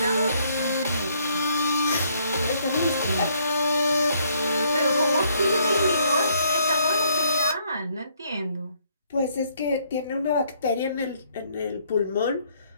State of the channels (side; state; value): both; inverted; correlation -0.68